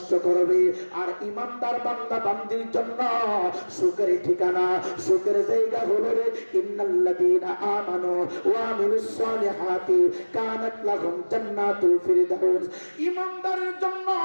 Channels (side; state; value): both; inverted; correlation -1.00